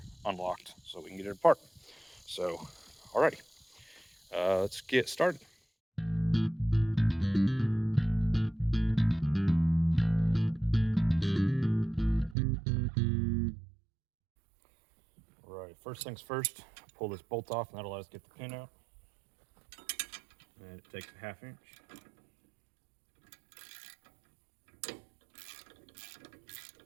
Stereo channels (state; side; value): drops out; left; at 12.4 s